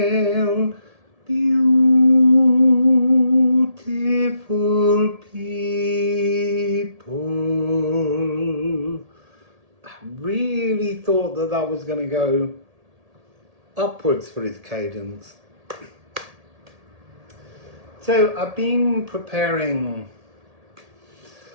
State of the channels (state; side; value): late; left; 1.8 ms